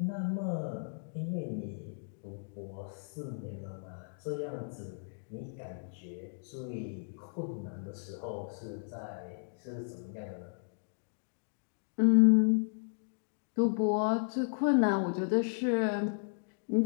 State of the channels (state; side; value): silent; right; digital silence